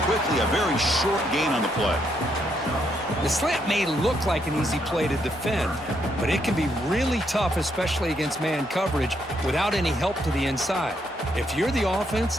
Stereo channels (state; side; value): normal; both; correlation 0.76